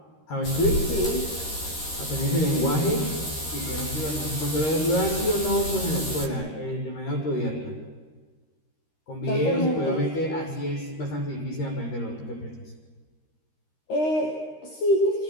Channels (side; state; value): right; late; 13 ms